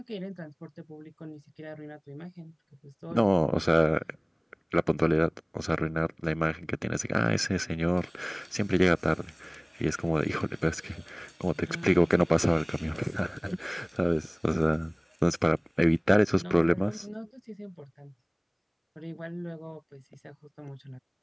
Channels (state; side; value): identical; both; correlation 1.00